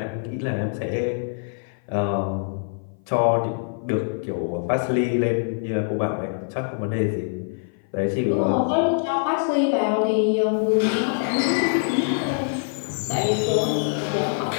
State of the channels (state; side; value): silent; right; 56 dB below the other